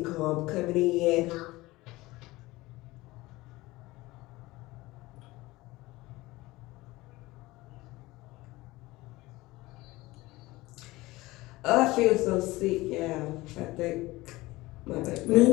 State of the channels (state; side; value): quieter; right; 19.8 dB